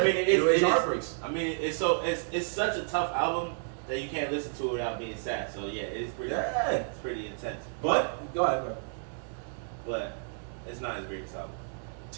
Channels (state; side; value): silent; left; digital silence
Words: mean, it's Heartbreaks. I mean, it's such a tough album that you can't listen to it without being sad. So yeah, it's pretty intense. But go ahead, bro. But it's not his greatest album.